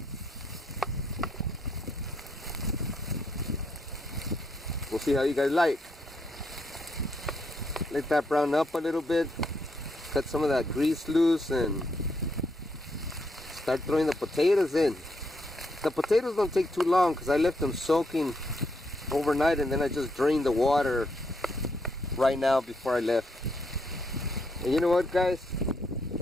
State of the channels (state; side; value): normal; both; correlation 0.77